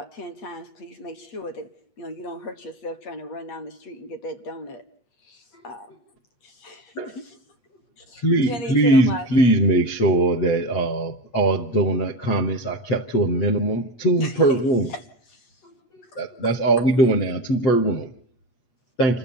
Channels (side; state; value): right; late; 8.3 ms